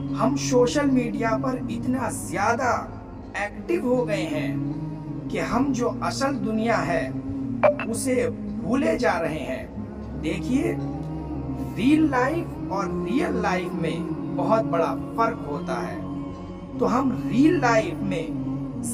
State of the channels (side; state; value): both; identical; correlation 1.00